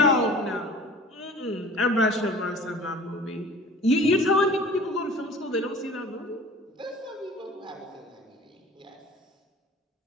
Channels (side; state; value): both; normal; correlation 0.44